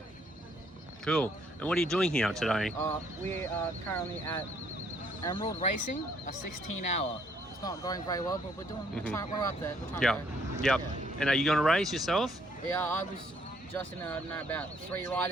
Cool. And what are you doing here today? we are currently at Emerald Racing, a 16-hour. It's not going very well, but we're trying, we're up there. We're trying Yeah. to Yep. Yeah. And are you going to race yourself? Yeah, I was just in about 3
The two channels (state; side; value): normal; both; correlation 0.66